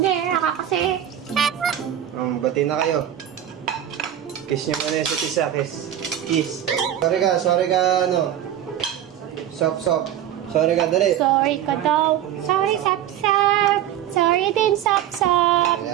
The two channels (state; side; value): quieter; left; 11.1 dB